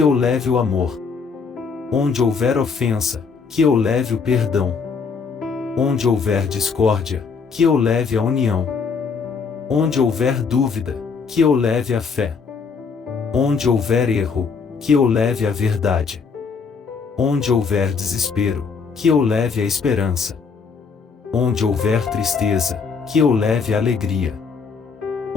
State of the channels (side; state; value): right; quieter; 5.4 dB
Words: leve o amor. Onde houver ofensa, que eu leve o perdão. Onde houver discórdia, que eu leve a união. Onde houver dúvida, que eu leve a fé. Onde houver erro, que eu leve a verdade. Onde houver desespero, que eu leve a esperança. Onde houver tristeza, que eu leve a alegria.